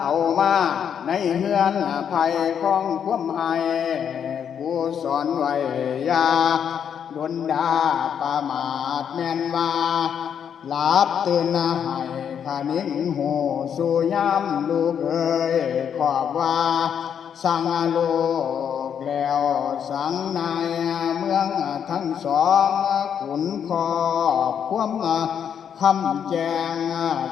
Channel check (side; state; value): right; quieter; 8.1 dB